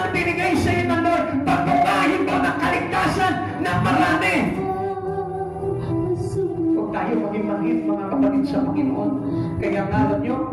binigay sa iyo ng Lord, pagbukahin mo ng kaligtasan ng marami. Tayo maging mangit mga kapatid sa Panginoon. Kaya nga alam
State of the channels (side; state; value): both; identical; correlation 1.00